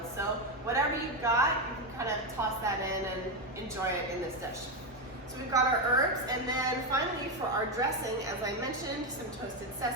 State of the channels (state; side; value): normal; both; correlation 0.09